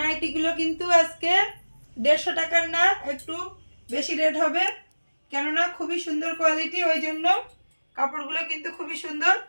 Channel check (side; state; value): both; inverted; correlation -1.00